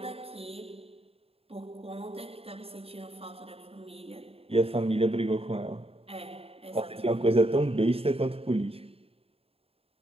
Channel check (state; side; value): late; left; 0.28 ms